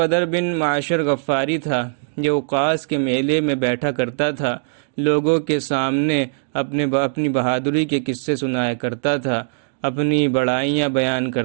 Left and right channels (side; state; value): left; silent; digital silence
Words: بن معاشر غفاری تھا، جو اوقاس کے میلے میں بیٹھا کرتا تھا، لوگوں کے سامنے اپنی بہادری کے قصے سنایا کرتا تھا، اپنی بڑائیاں بیان